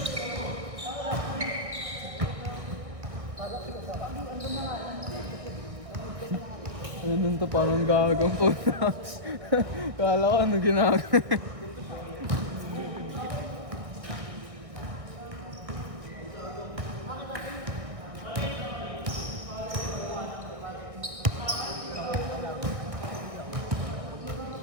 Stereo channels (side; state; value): left; late; 1.6 ms